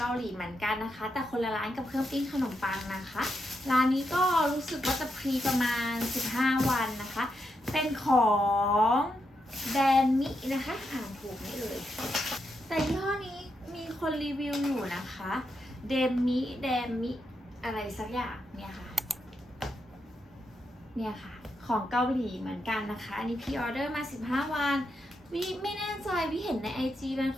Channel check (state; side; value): normal; both; correlation 0.83